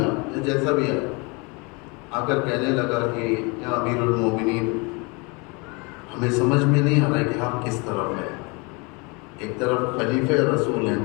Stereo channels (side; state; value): right; quieter; 29.4 dB